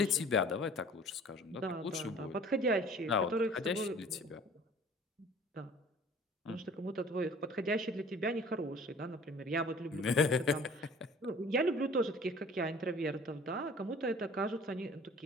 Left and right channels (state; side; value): normal; both; correlation 0.49